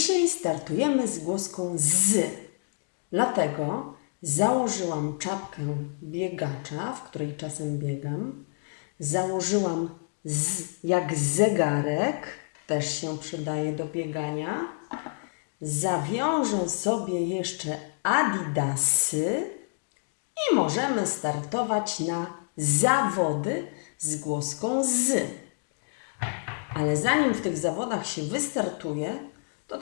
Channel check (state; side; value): silent; right; 56 dB below the other